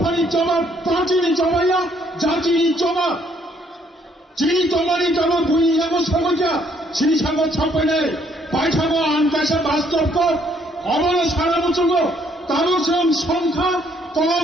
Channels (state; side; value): normal; both; correlation 0.67